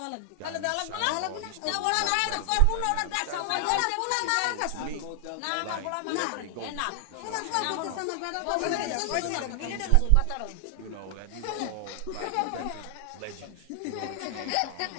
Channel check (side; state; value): both; different; correlation 0.00